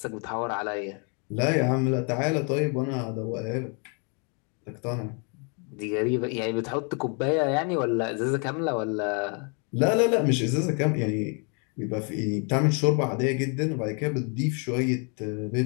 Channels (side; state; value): right; quieter; 36.6 dB